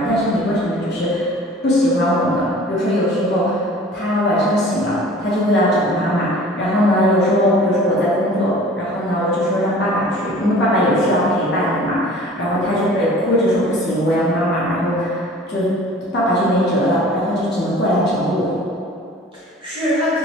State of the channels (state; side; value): normal; both; correlation 0.46